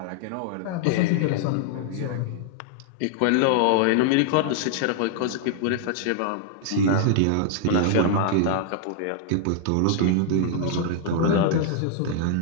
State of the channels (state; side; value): different; both; correlation -0.01